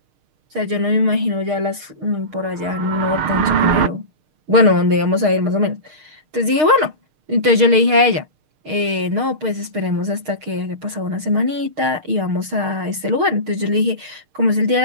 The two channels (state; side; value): late; left; 6.5 ms